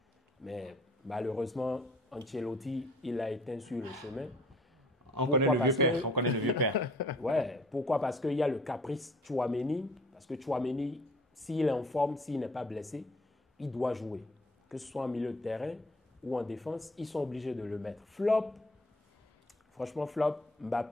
Mais malheureusement, Ancelotti, il a éteint sur le chemin. On connaît le vieux père. Ouais, pourquoi? Parce qu'il y a le caprice Tchouaméni. Parce que Tchouaméni, s'il est en forme, s'il n'est pas blessé, il doit jouer. Que ce soit en milieu de terrain ou en défense, ils sont obligés de le mettre. Flop, franchement flop,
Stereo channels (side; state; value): both; normal; correlation 0.55